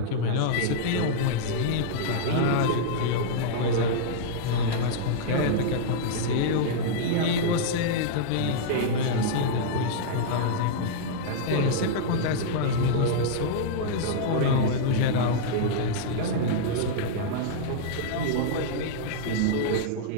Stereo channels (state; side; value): different; both; correlation -0.02